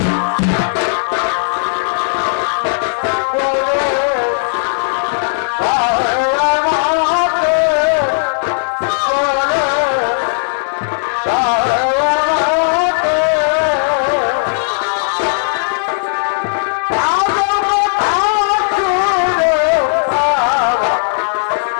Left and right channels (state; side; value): silent; right; 70 dB below the other